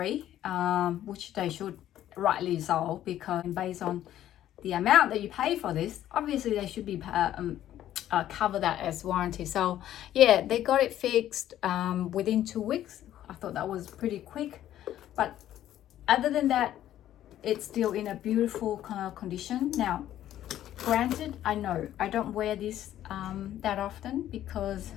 which they should, rightly so, because based on the amount that you pay for this, obviously they should be cover that as warranty. So yeah, they got it fixed within 2 weeks. I thought that was pretty quick, but other than that, it's still in a beautiful kind of condition. Now, granted, I know I don't wear this that often because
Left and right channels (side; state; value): right; quieter; 12.3 dB